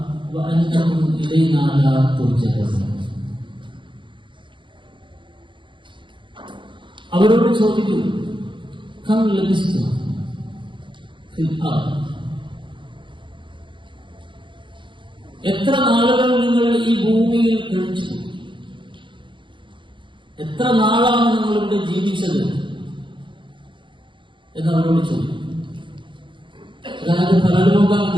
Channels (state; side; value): late; left; 0.23 ms